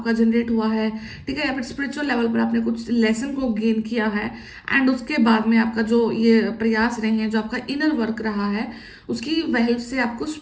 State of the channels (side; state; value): both; identical; correlation 1.00